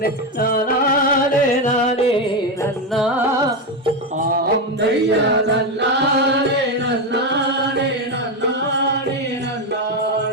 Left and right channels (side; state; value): both; normal; correlation 0.11